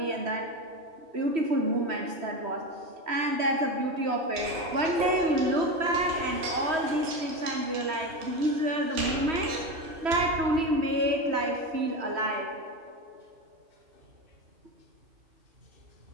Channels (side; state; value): left; late; 3.1 ms